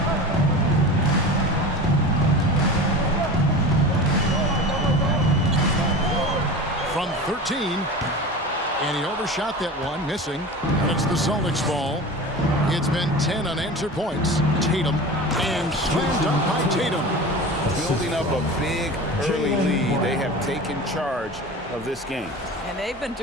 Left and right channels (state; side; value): normal; both; correlation 0.32